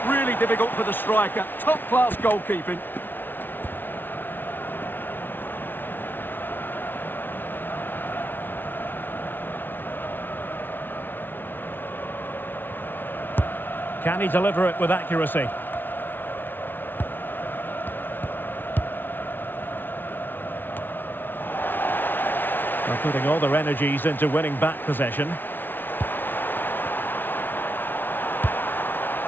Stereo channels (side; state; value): right; late; 0.095 ms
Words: really difficult for the striker. Top-class goalkeeping. Can he deliver it with accuracy? They're putting all their energies into winning back possession.